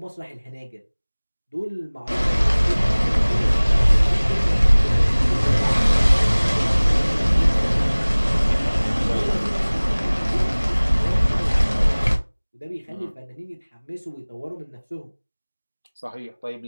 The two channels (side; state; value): both; inverted; correlation -1.00